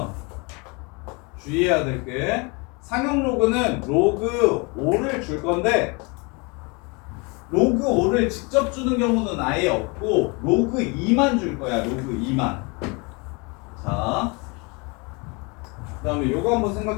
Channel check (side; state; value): right; quieter; 29.8 dB